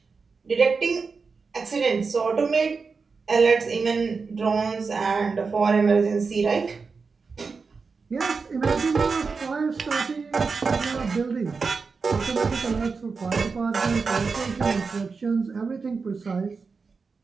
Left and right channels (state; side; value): quieter; left; 4.8 dB